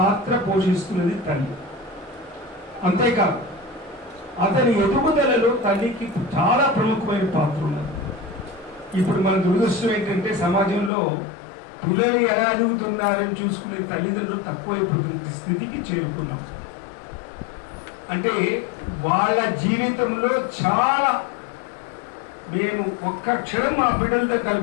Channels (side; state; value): right; drops out; at 10.9 s